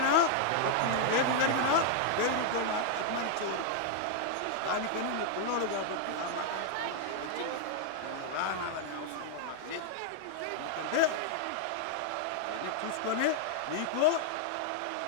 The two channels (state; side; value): different; both; correlation -0.01